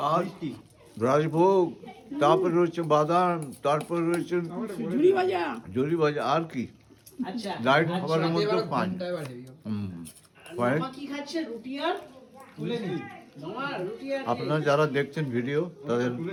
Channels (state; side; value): identical; both; correlation 1.00